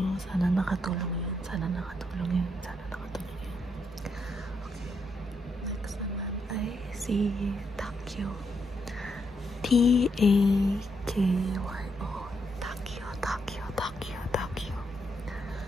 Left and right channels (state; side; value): normal; both; correlation 0.79